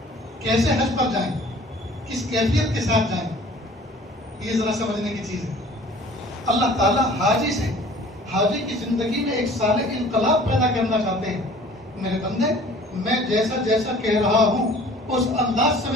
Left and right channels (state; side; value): normal; both; correlation 0.49